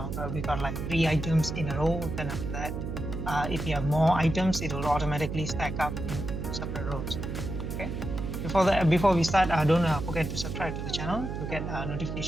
we got like 3 items in a row. Then after that, if you have more items, it will automatically stack up in separate rows. Okay. Before we start, don't forget to subscribe to the channel to get a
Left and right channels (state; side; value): noise; right; hum, 5 dB below the sound